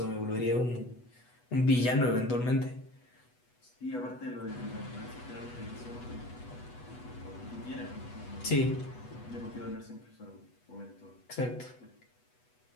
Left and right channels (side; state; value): right; late; 8.1 ms